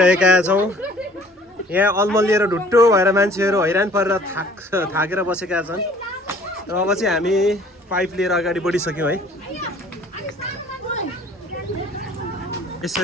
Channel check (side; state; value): both; normal; correlation 0.53